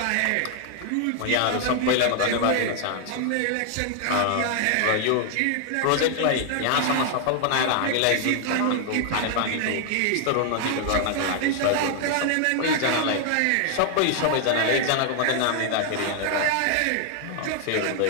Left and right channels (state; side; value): different; both; correlation 0.00